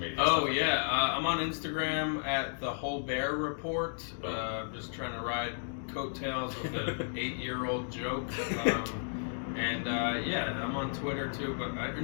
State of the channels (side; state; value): right; silent; digital silence